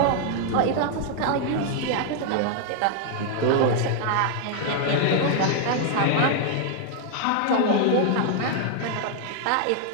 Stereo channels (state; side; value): different; both; correlation 0.00